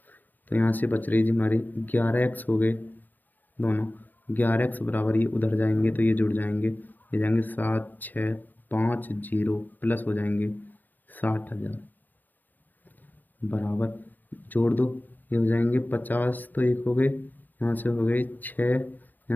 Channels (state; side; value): late; right; 0.086 ms